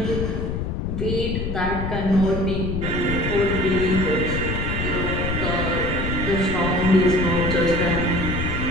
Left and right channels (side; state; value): left; noise; rumble, 2 dB below the sound